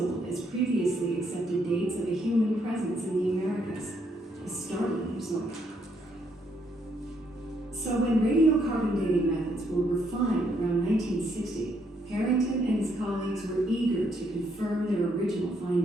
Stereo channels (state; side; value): normal; both; correlation 0.73